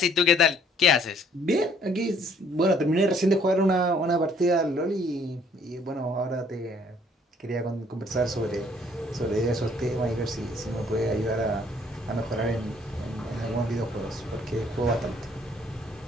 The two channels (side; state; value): both; normal; correlation 0.61